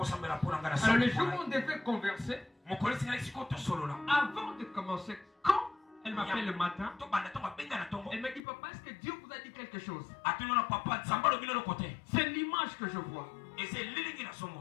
le jour où on devait converser, avant de commencer, quand elle m'appelle le matin, elle m'a dit papa, est-ce que Dieu vous a dit quelque chose? C'est l'image que je vois.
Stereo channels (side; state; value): right; drops out; at 8.4 s